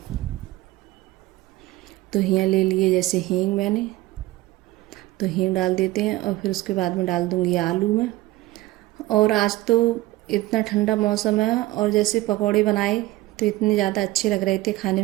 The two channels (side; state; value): left; quieter; 18.1 dB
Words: तो यहाँ ले लिए जैसे हींग मैंने, तो हींग डाल देते हैं और फिर उसके बाद में डाल दूँगी आलू में। और आज तो इतना ठंडा मौसम है और जैसे पकौड़े बनाए तो इतने ज़्यादा अच्छे लग रहे थे, खाने